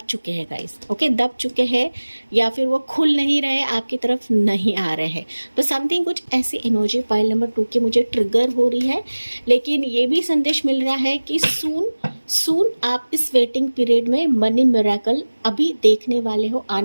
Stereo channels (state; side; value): inverted; both; correlation -1.00